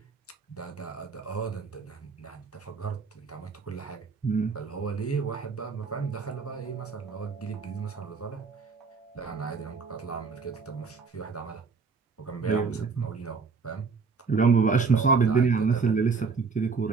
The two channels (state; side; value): quieter; left; 4.9 dB